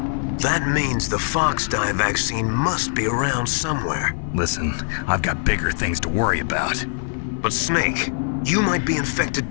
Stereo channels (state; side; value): silent; right; 62 dB below the other